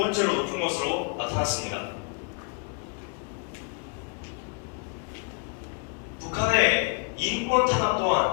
높은 것으로 나타났습니다. 북한의 인권 탄압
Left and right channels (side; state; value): right; quieter; 38.2 dB